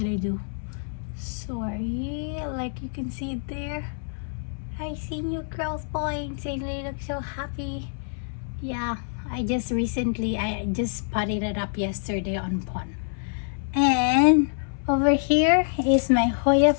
I do? Sorry, like you can see it there. I see new growth points and they look so happy. Yeah, I just potted it up yesterday on pond. And over here is my Hoya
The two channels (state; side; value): silent; right; 61 dB below the other